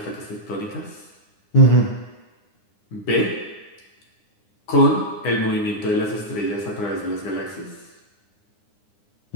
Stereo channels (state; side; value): late; right; 9.7 ms